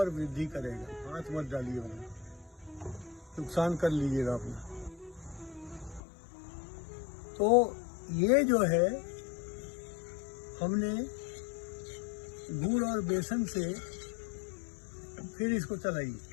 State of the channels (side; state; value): right; drops out; at 6.0 s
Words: वृद्धि करेगा। हाथ मत डालिए, नुकसान कर लीजिएगा अपना। तो ये जो है हमने गुड़ और बेसन से फिर इसको चलाइए।